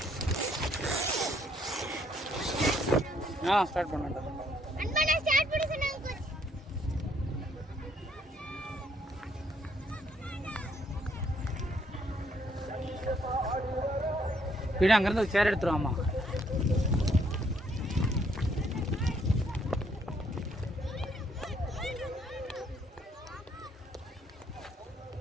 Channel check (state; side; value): normal; both; correlation 0.68